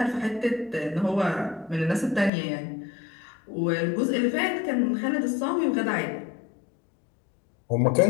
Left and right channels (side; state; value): right; drops out; at 2.3 s